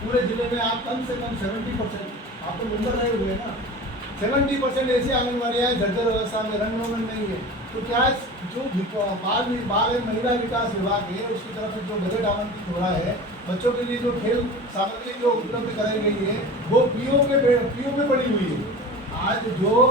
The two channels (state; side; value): normal; both; correlation 0.35